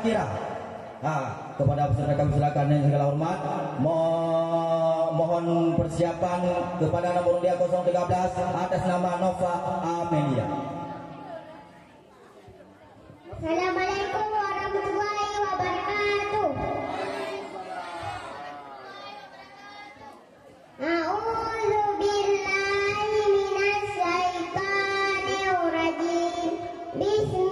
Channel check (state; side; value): identical; both; correlation 1.00